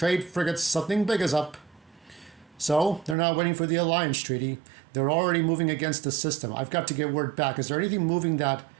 frigates. Something big is up. So, they're now waiting for the Alliance Treaty. They're already moving against the system. I've got to get word back. Is there anything moving that...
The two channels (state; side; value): drops out; left; at 3.2 s